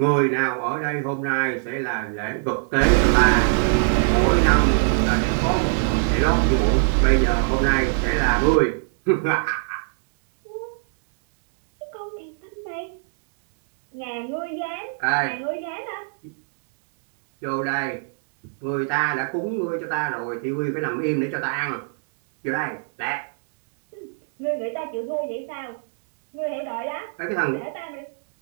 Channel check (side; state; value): left; silent; digital silence